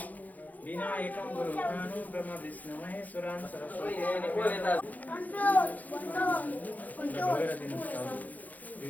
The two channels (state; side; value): late; right; 0.080 ms